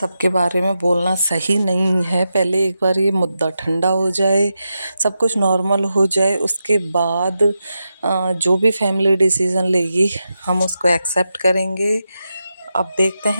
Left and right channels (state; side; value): inverted; both; correlation -0.88